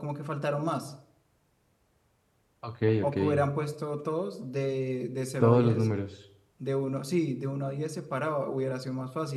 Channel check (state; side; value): identical; both; correlation 1.00